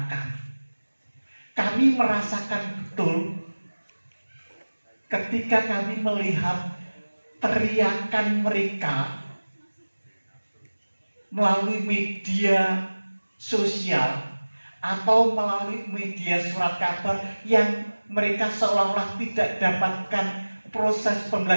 kami. Kami merasakan betul ketika kami melihat teriakan mereka melalui media sosial atau melalui media surat kabar yang mereka seolah-olah tidak dapatkan proses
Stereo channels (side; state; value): both; inverted; correlation -1.00